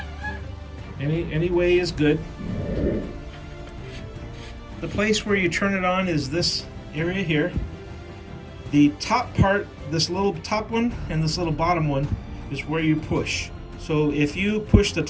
Any way is good. The place where you turn it on is this area here. The top part, this little top one and this little bottom one, is where you push. So if you push the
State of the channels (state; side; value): identical; both; correlation 1.00